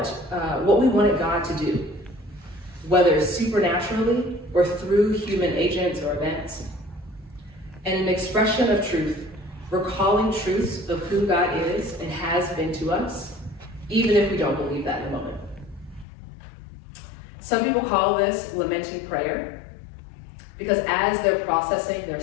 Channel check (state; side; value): drops out; right; at 16.1 s